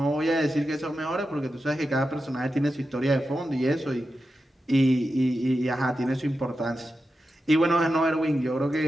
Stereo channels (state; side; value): normal; both; correlation 0.90